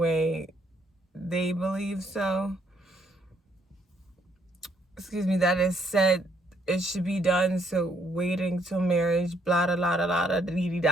they believe so, that is said it should be done, so waiting till marriage, blah, blah, blah, blah, blah, dee,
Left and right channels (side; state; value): both; normal; correlation 0.70